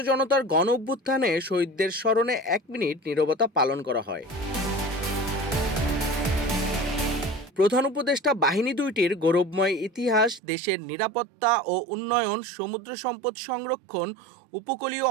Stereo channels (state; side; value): drops out; left; at 10.4 s